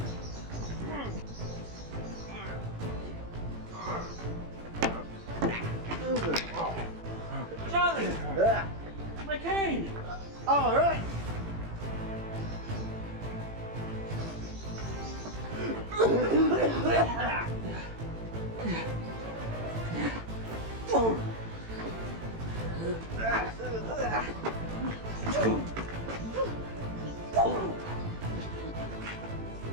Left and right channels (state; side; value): late; left; 18 ms